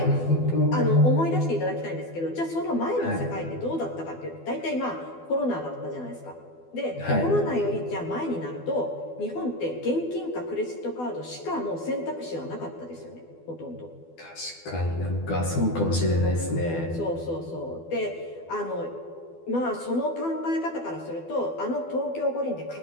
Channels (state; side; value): late; right; 12 ms